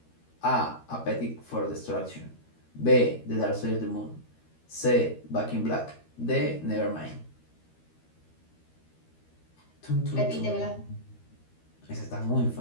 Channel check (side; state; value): right; late; 13 ms